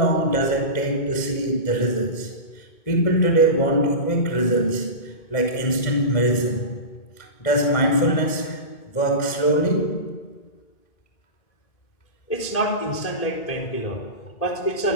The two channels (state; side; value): late; right; 2.2 ms